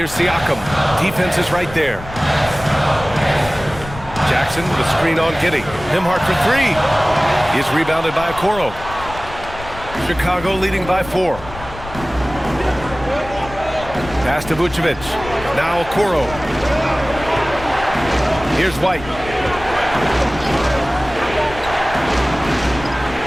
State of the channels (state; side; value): noise; left; rumble, 14 dB below the sound